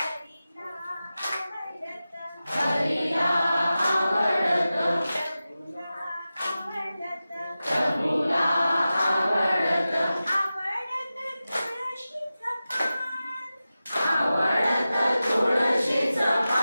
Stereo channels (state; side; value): inverted; both; correlation -0.94